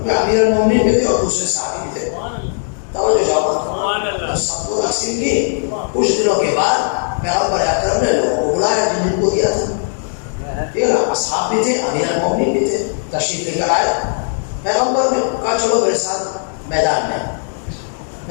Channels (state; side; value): silent; right; digital silence